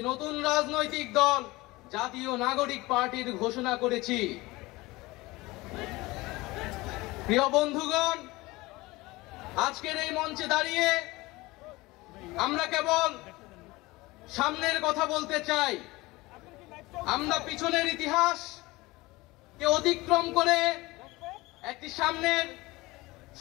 নতুন রাজনৈতিক দল জাতীয় নাগরিক পার্টির ঘোষণা করেছি। প্রিয় বন্ধুগণ, আজকের এই মঞ্চে দাঁড়িয়ে আমরা কেবল সামনের কথা বলতে চাই। আমরা পিছনের ইতিহাসকে অতিক্রম করে একটি সামনের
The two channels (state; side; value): quieter; right; 21.1 dB